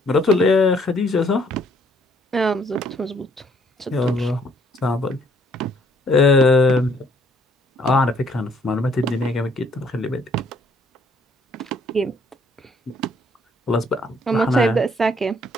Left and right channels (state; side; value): normal; both; correlation 0.65